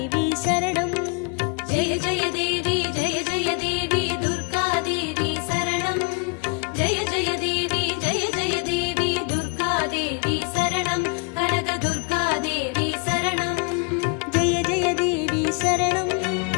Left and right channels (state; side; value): quieter; right; 33.6 dB